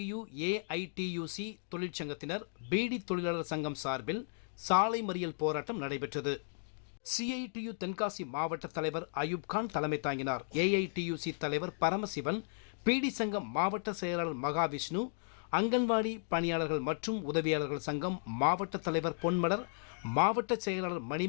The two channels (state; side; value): silent; right; digital silence